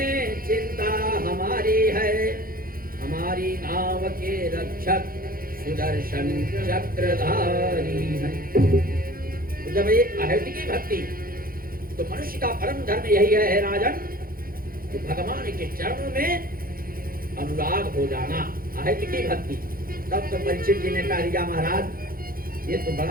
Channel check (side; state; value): left; late; 0.42 ms